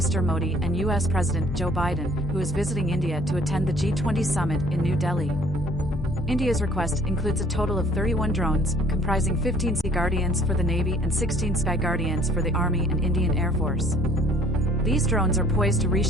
Modi and US President Joe Biden, who is visiting India to attend the G20 Summit in New Delhi. India's request includes a total of 31 drones, comprising 15 Sea Guardians for the Navy and 16 Sky Guardians for the Army and Indian Air Force. These drones are poised to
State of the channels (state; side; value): normal; both; correlation 0.56